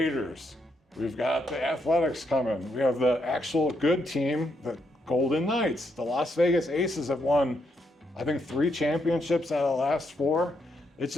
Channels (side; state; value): both; normal; correlation 0.78